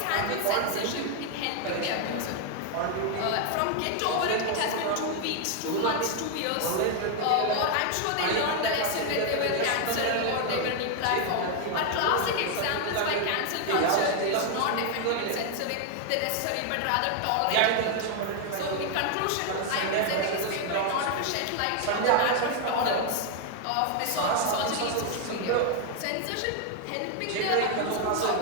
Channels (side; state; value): both; different; correlation 0.00